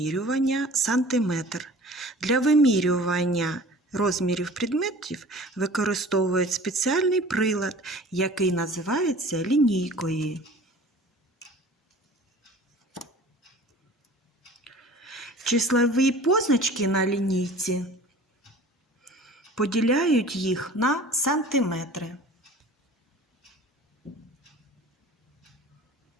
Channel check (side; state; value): both; normal; correlation 0.44